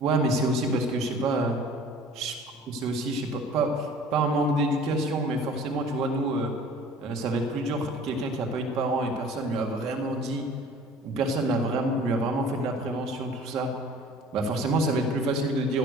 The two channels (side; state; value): both; normal; correlation 0.47